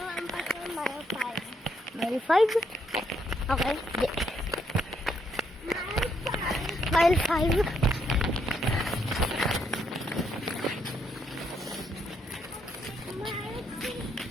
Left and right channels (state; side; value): normal; both; correlation 0.75